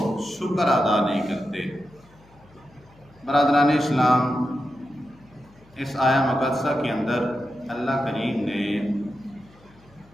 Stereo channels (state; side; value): noise; left; hum, 28 dB below the sound